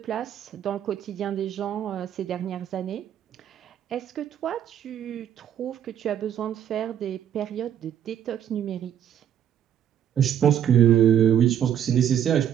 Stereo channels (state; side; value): quieter; left; 9.8 dB